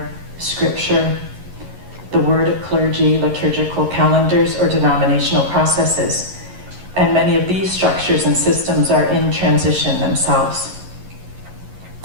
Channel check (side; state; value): left; late; 11 ms